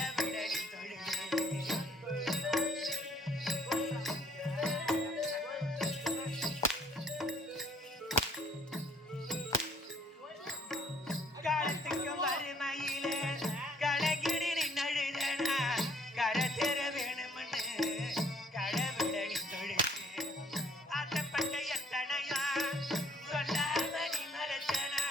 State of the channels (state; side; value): normal; both; correlation 0.63